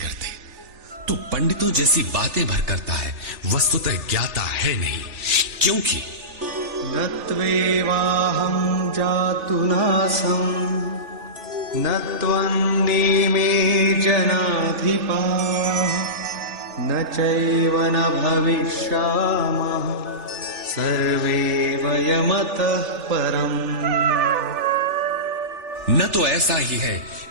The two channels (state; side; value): late; left; 3.4 ms